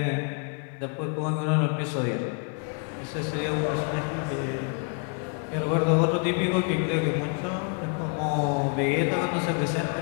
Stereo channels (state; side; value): quieter; right; 38.8 dB